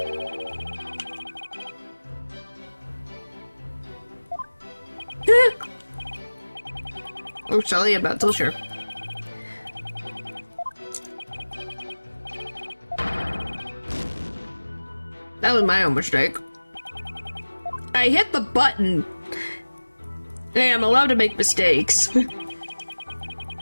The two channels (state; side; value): inverted; both; correlation -1.00